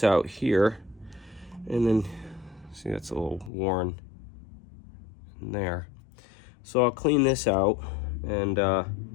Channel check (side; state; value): right; drops out; at 3.5 s